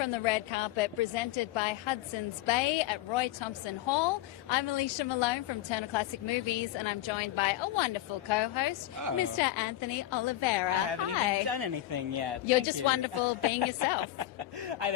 the red carpet, presented by Hudson's Bay at Roy Thompson Hall. I'm Alicia Malone from Turner Classic Movies, and I'm joined by a wonderful co-host, Mr. Anthony Oliveira. I haven't even done anything yet. You're just wonderful being yourself. Hi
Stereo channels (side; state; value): right; quieter; 14.5 dB